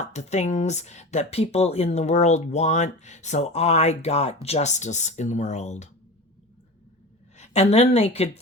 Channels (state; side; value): normal; both; correlation 0.31